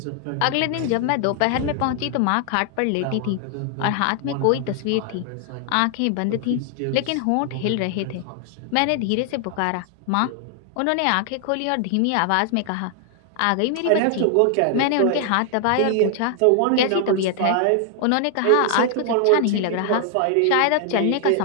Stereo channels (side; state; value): both; different; correlation 0.00